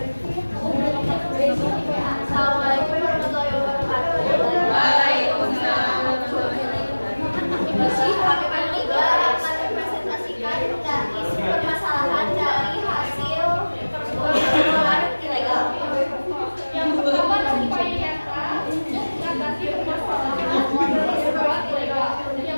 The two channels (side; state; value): both; inverted; correlation -1.00